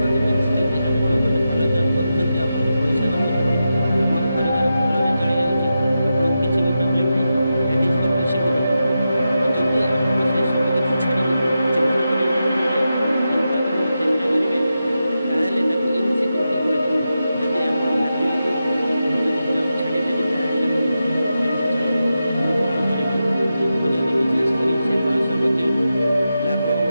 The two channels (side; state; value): both; inverted; correlation -0.89